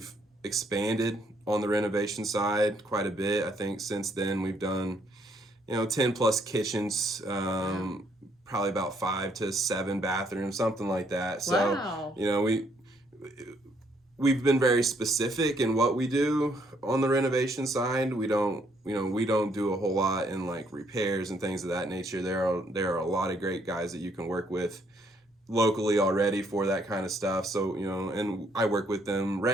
expanded on the renovation side quite a bit. I think since then we've done 10 plus kitchens, Wow. probably about 5 to 7 bathrooms, something like that. So Wow. we've been very specific in what we do on the renovation side. We don't do a whole lot in like repairs and things of that nature. There are a lot of great guys that you can work with locally already for that kind of stuff. So, and I work with them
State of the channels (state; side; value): normal; both; correlation 0.69